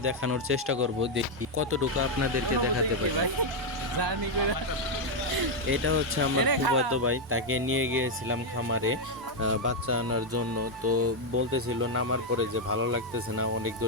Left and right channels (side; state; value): both; normal; correlation 0.01